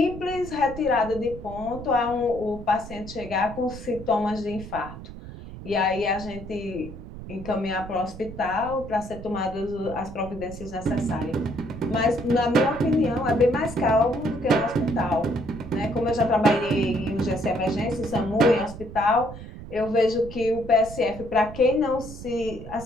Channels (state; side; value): noise; right; rumble, 13 dB below the sound